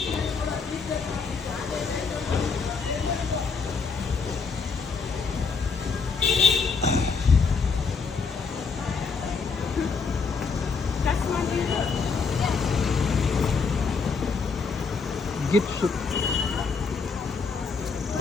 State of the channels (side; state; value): right; quieter; 5.0 dB